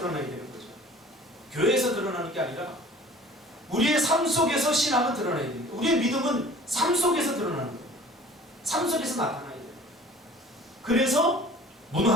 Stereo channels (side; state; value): both; normal; correlation 0.47